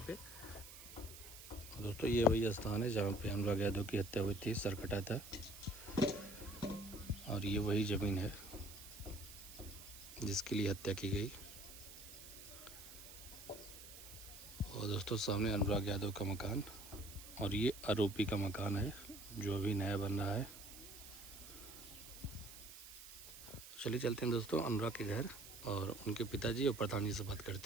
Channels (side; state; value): right; noise; hiss, 14 dB below the sound